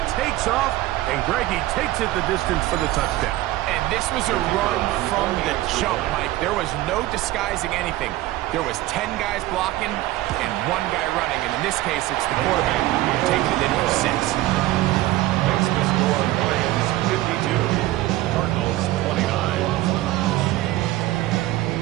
takes off, and Greggy takes it the distance for the touchdown. And this was a run from the jump, Mike. There was no disguising anything. There was 10 guys blocking and 1 guy running. And in this case, it's the quarterback taking it in for 6. Makes the score Lions 52, Cardinals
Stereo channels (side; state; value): left; quieter; 16.5 dB